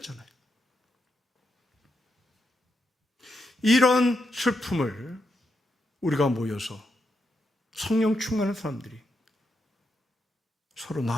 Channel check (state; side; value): normal; both; correlation 0.83